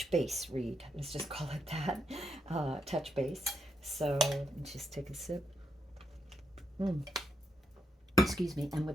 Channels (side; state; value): both; normal; correlation 0.79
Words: base read. Let's just call it that, touch base. So just take a sip. Mm, excuse me. And